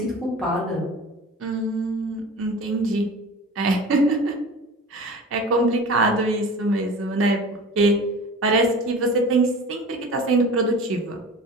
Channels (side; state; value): both; normal; correlation 0.37